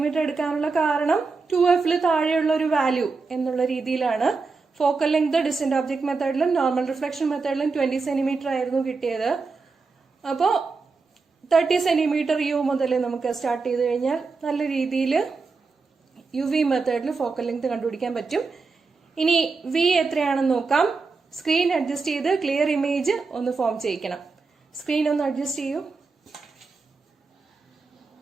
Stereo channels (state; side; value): quieter; left; 4.4 dB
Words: എടുക്കാനുള്ള കാരണം 2f താഴെയുള്ള ഒരു വാല്യൂ എന്നുള്ള രീതിയിലാണ്. ഫോക്കൽ ലെങ്ത് ഡിസ്റ്റന്റ് ഓബ്ജക്ട് മെത്തേഡിലും നോർമൽ റിഫ്ലക്ഷൻ മെത്തേഡിലും 20 സെന്റിമീറ്റർ ആയിരുന്നു കിട്ടിയത്. അപ്പോ 30 സെന്റിമീറ്റർ യു മുതൽ നമുക്ക് സ്റ്റാർട്ട് ചെയ്ത് കഴിഞ്ഞാൽ നല്ല രീതിയിൽ UV മെത്തേഡിൽ ഫോക്കൽ ലെങ്ത് കണ്ടുപിടിക്കാൻ പറ്റും. ഇനി വി എത്രയാണെന്ന് നോക്കാം. സ്ക്രീൻ അഡ്ജസ്റ്റ് ചെയ്ത് ക്ലിയർ ഇമേജ് ഒന്ന് ഫോം ചെയ്യിക്കണം. സ്ക്രീൻ ഒന്ന് അഡ്ജസ്റ്റ് ചെയ്യൂ.